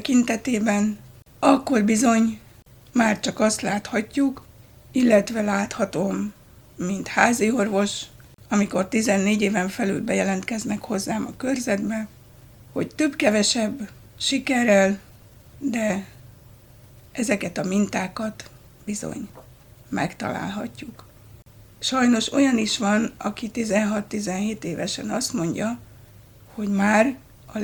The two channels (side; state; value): both; identical; correlation 1.00